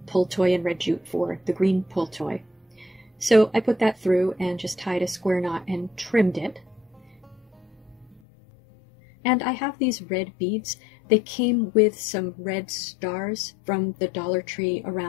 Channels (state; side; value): drops out; right; at 8.2 s